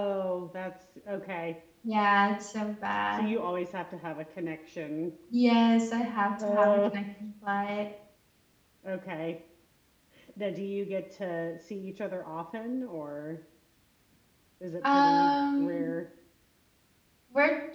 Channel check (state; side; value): identical; both; correlation 1.00